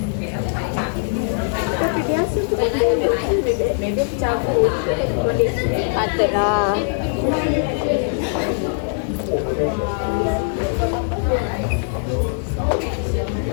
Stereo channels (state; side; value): silent; right; digital silence